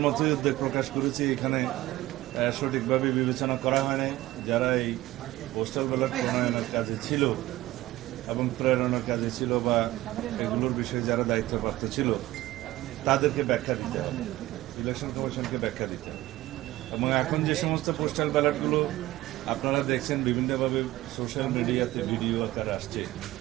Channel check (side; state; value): left; quieter; 16.9 dB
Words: মতোই উদ্বেগ প্রকাশ করেছি। এখানে সঠিকভাবে বিবেচনা করা হয় নাই। যারা এই পোস্টাল ব্যালট প্রণয়নের কাজে ছিল এবং প্রেরণার কাজে ছিল বা এগুলোর বিষয়ে যারা দায়িত্বপ্রাপ্ত ছিল, তাদেরকে ব্যাখ্যা দিতে হবে, ইলেকশন কমিশনকে ব্যাখ্যা দিতে হবে। এবং এখন যে সমস্ত পোস্টাল ব্যালটগুলো আপনারা দেখছেন বিভিন্নভাবে সোশ্যাল মিডিয়াতে ভিডিও আকারে আসছে,